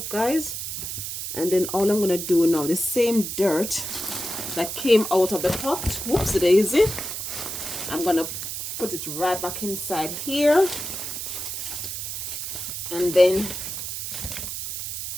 guys. And then all I'm gonna do now, the same dirt that came out of the pot, whoops daisy, I'm gonna put it right back inside here, and then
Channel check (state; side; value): noise; right; hiss, 5 dB below the sound